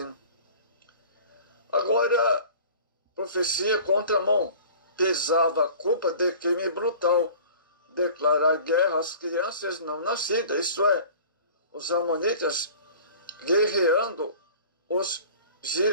Agora, profecia contra a mão. Pesava a culpa de crime brutal. Declarar guerra às crianças não nascidas, isto é, os amonitas guerreando os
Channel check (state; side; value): inverted; both; correlation -0.44